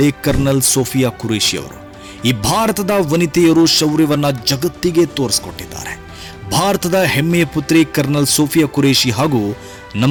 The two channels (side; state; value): both; identical; correlation 1.00